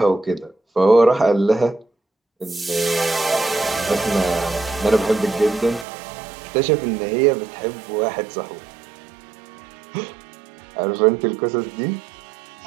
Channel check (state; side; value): drops out; left; at 5.9 s